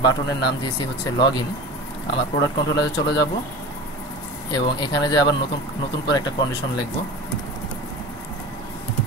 বাটনের নাম দিয়েছি হচ্ছে লগ ইন, আমার প্রোডাক্ট কন্ট্রোলারে চলে যাব এবং এখানে যে আবার নতুন করে একটা কন্ডিশন লিখব,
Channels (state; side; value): normal; both; correlation 0.33